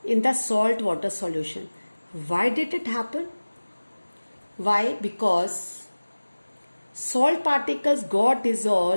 in the salt water solution. Why did it happen? Why? Because salt particles got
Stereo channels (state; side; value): inverted; both; correlation -1.00